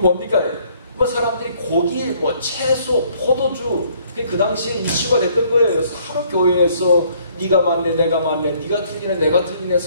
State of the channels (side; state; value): both; inverted; correlation -0.63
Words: 뭐 사람들이 고기, 채소, 포도주, 그 당시에 이슈가 됐던 거예요. 서로 교회에서 네가 맞네, 내가 맞네, 네가 틀리네, 내가 틀리네,